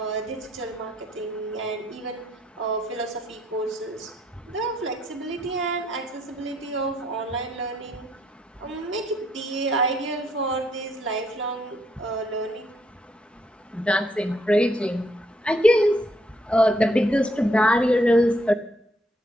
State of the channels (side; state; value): both; normal; correlation 0.72